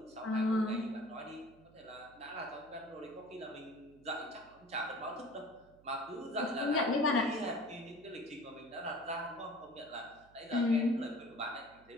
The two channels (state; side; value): noise; right; hum, 26 dB below the sound